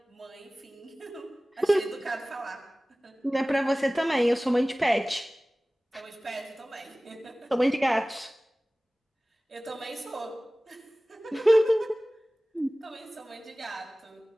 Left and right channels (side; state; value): both; normal; correlation 0.98